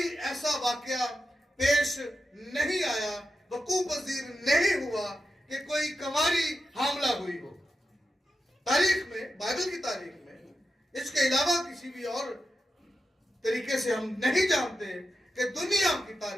ایسا واقعہ پیش نہیں آیا، وقوع پذیر نہیں ہوا کہ کوئی کنواری حاملہ ہوئی ہو. تاریخ میں، بائبل کی تاریخ میں اس کے علاوہ کسی بھی اور طریقے سے ہم نہیں جانتے کہ دنیا کی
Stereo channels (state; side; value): normal; both; correlation 0.90